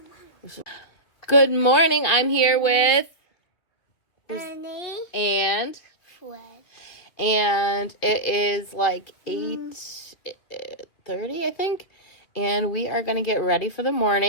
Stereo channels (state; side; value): late; right; 2.3 ms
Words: Good morning. I'm here with Ernie. and Fred. it is like 8:30, I think, and we are gonna get ready for the